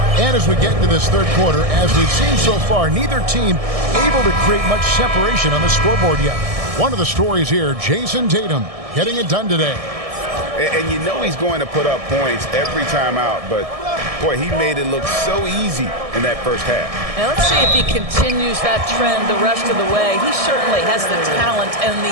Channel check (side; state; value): left; late; 1.6 ms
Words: And as we get into this third quarter, as we've seen so far, neither team able to create much separation on the scoreboard yet. One of the stories here, Jason Tatum getting it done today. And you know he's going to put up points every time out, but boy, he made it look so easy in that first half. Now let's see if he continues that trend the rest of the way. He certainly has the talent and the